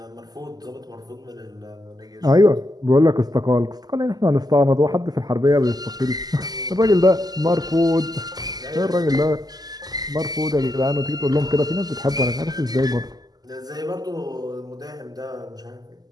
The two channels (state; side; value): late; left; 0.19 ms